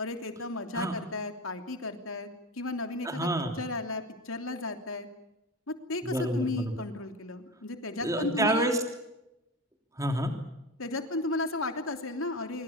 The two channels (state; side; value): normal; both; correlation 0.26